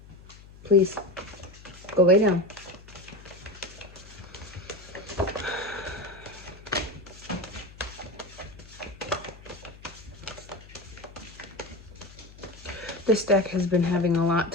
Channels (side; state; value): left; noise; hum, 19 dB below the sound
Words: Please, go lay down. This deck has been having a lot